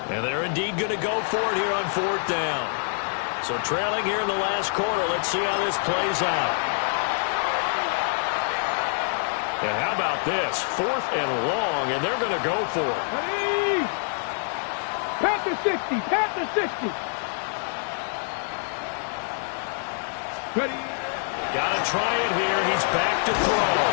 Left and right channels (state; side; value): silent; right; 61 dB below the other